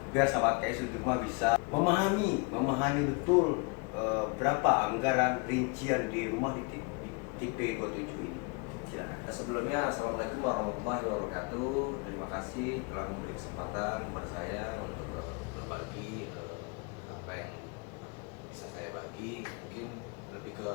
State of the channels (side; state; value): right; quieter; 31.9 dB